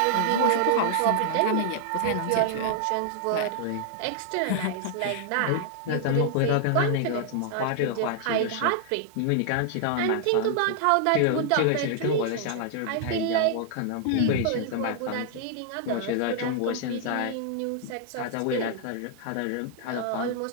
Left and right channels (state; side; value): different; both; correlation 0.00